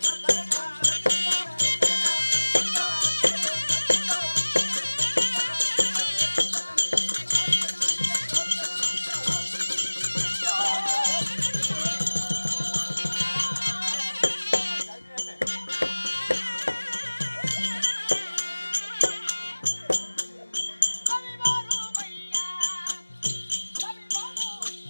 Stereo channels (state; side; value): inverted; both; correlation -1.00